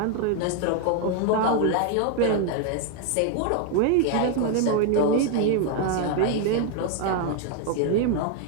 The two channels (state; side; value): different; both; correlation 0.00